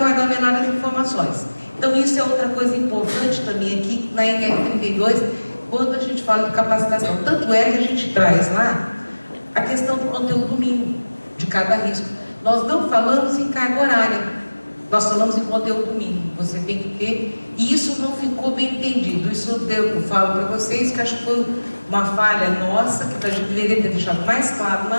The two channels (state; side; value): inverted; both; correlation -1.00